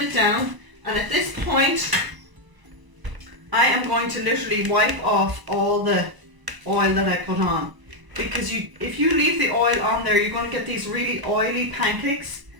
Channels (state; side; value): late; left; 1.0 ms